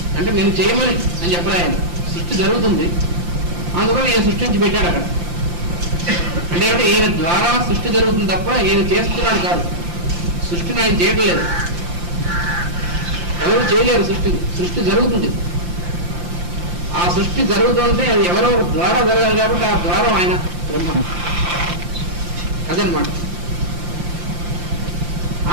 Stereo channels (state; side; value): late; left; 5.8 ms